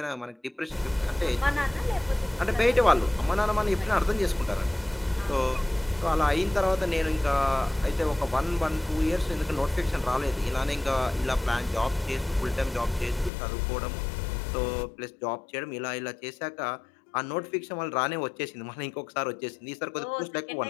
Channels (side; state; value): right; drops out; at 13.3 s